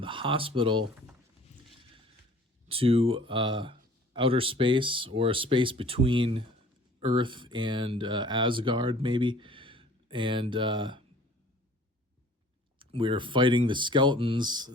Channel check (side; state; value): both; normal; correlation 0.51